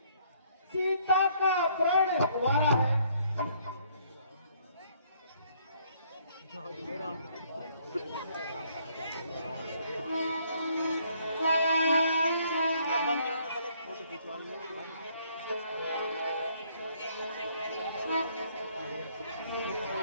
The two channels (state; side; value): inverted; both; correlation -0.65